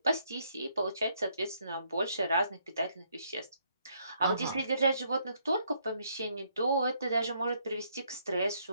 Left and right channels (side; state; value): both; inverted; correlation -0.71